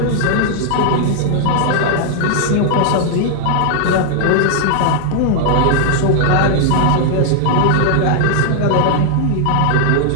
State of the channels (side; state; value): both; different; correlation 0.00